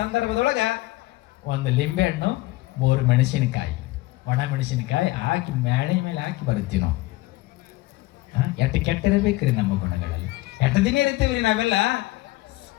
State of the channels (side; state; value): right; quieter; 19.0 dB